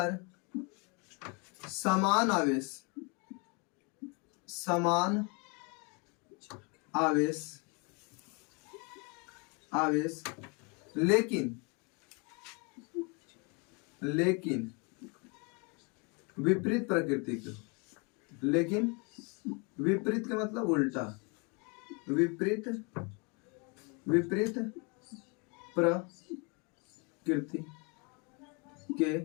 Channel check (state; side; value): quieter; right; 32.2 dB